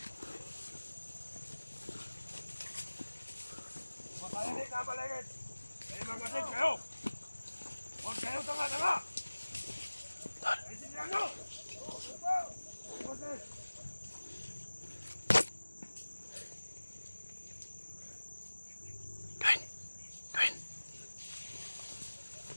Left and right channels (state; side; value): inverted; both; correlation -1.00